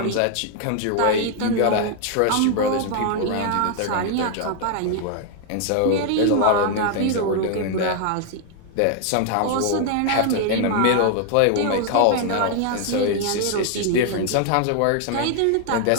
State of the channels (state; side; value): different; both; correlation 0.00